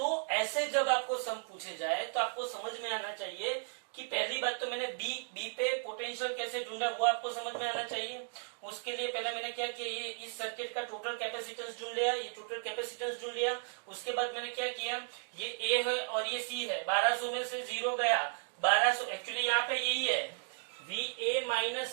ऐसे जब आपको सम पूछे जाए तो आपको समझ में आना चाहिए कि पहली बात तो मैंने बी पे पोटेंशियल कैसे ढूंढा वो आपको समझ में आना चाहिए। उसके लिए पहले मैंने क्या किया, ये इस सर्किट का टोटल कैपेसिटेंस ढूंढ लिया, उसके बाद मैंने क्या किया, ये ए है और ये सी है, 1200 में से 0 गया, 1200 एक्चुअली यहाँ पे यही है VA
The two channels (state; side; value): silent; left; 54 dB below the other